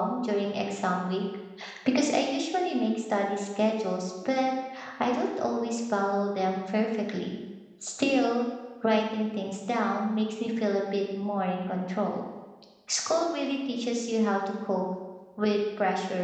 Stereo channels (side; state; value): both; identical; correlation 1.00